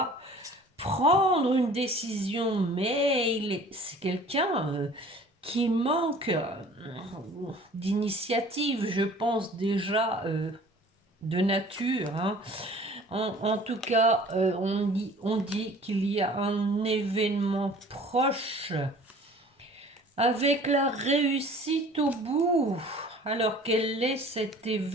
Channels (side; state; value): both; normal; correlation 0.48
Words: prendre une décision, mais c'est quelqu'un qui manque d'initiative, je pense déjà de nature. Hein. En tout cas, on dit qu'il y a un événement proche avec la réussite au bout. Alors quel est cet